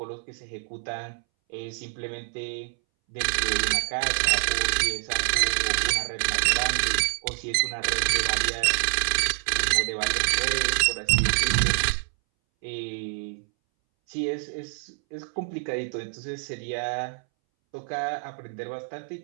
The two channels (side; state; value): left; silent; 61 dB below the other